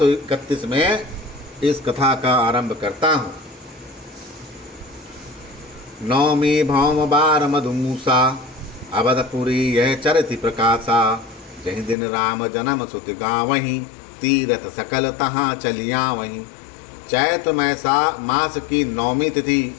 में इस कथा का आरंभ करता हूँ। नौमी भौम बार मधुमूसा, अवधपुरी यह चरित प्रकाशा। जहि दिन राम जन्म सुत गावहीं, तीरथ सकल तहाँ चलिया वहीं। चैत्र मास की 9वीं तिथि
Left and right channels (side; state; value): right; drops out; at 12.0 s